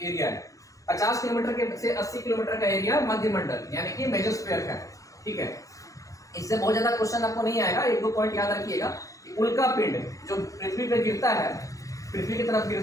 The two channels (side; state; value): right; late; 0.16 ms